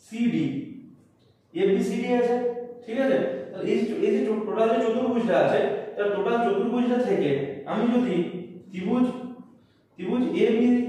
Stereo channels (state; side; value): identical; both; correlation 1.00